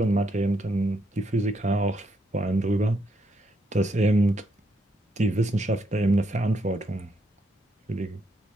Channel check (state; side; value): normal; both; correlation 0.77